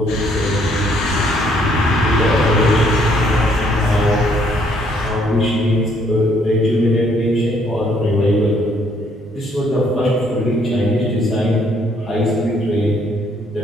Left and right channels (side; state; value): both; normal; correlation 0.67